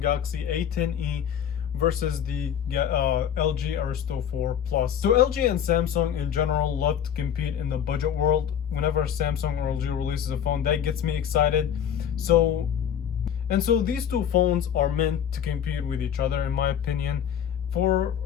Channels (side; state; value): right; quieter; 9.1 dB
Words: Galaxy A10e versus the LG Aristo 4 Plus. So LG and Samsung in general love to compete in the budget world. Whenever Samsung or LG releases a phone, that gets me excited. So these two phones are meant to compete with each other, in my opinion, for